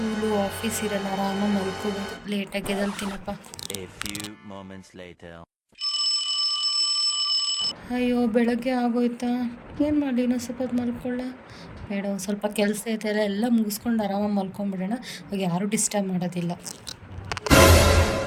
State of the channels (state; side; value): identical; both; correlation 1.00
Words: office ಇರಲ್ಲ, ಆರಾಮಾಗಿ ಮಲ್ಕೋಬೋದು. ಲೇಟಾಗಿ ಎದ್ದೇಳ್ತೀನಪ್ಪ. ಅಯ್ಯೋ ಬೆಳಗ್ಗೆ ಆಗೋಯ್ತಾ, ಏನು ಮಾಡಲಿ, ಇನ್ನೂ ಸ್ವಲ್ಪ ಹೊತ್ತು ಮಲ್ಕೊಳ್ಳ ಬೇಡ. ಒಂದು ಸ್ವಲ್ಪ ಕೆಲಸ ಐತೆ ಎಲ್ಲ ಮುಗಿಸ್ಕೊಂಡು ಆರಾಮಾಗಿ ಮಲ್ಕೊಂಡ್ಬಿಡೋಣ. ಅವಾಗ ಯಾರೂ ಡಿಸ್ಟರ್ಬ್ ಮಾಡೋದಿಲ್ಲ.